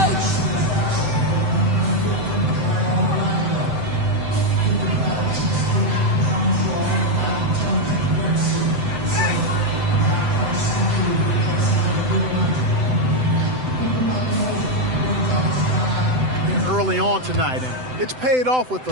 Early on tonight, and it's paid off with a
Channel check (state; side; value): late; left; 7.8 ms